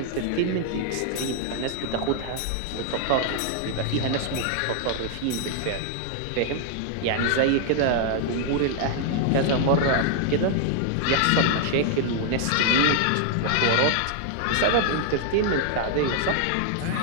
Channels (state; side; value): different; both; correlation 0.00